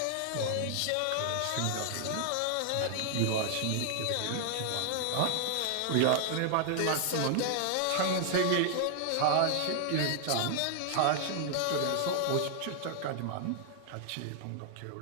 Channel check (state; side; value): different; both; correlation 0.00